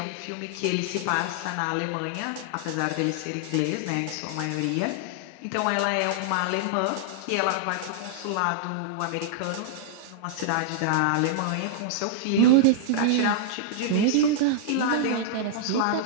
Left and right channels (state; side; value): different; both; correlation -0.01